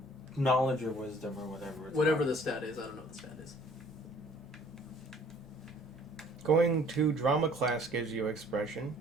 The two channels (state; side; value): normal; both; correlation 0.55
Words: knowledge or wisdom or whatever. It's Whatever called. the stat is, I don't know what the stat is. Going to drama class gives you expression.